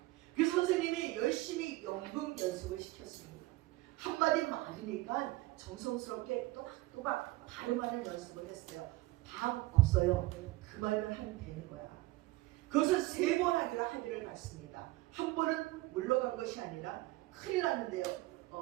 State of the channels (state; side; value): quieter; left; 19.4 dB